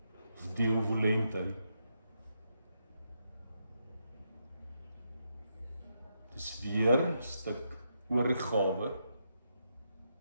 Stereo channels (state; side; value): inverted; both; correlation -0.81